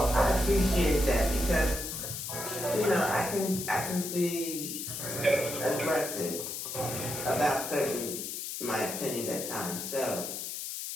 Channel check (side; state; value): left; noise; hiss, 6 dB below the sound